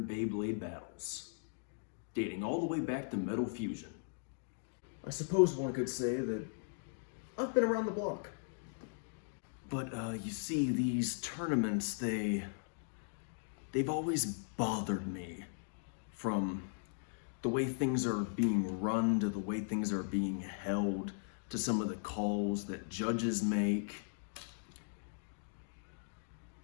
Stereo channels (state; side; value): silent; right; digital silence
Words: Beyblade battles, dating all the way back to Metal Fusion. I suppose one could say that I've been around the block. But you see, these tournaments, they've always bothered me. From the way things are being run, to the way things are being held, to some of the calls that judges make.